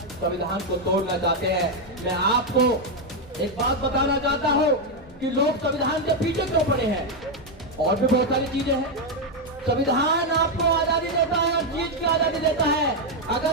संविधान को तोड़ना चाहते हैं। मैं आपको एक बात बताना चाहता हूँ कि लोग संविधान के पीछे क्यों पड़े हैं। और भी बहुत सारी चीजें हैं। संविधान आपको आजादी देता है, हर चीज की आजादी देता है।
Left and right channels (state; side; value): normal; both; correlation 0.03